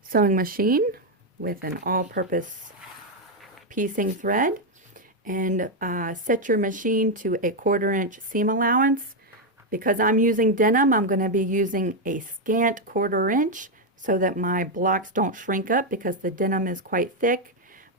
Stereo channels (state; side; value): normal; both; correlation 0.03